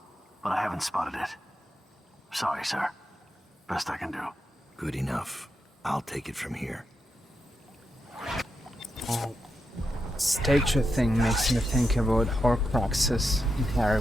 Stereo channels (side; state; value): both; normal; correlation 0.86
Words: but I haven't spotted it. Sorry, sir. Best I can do. Good enough. I'll take it from here. Statue thing makes me think about Horcruxes in Harry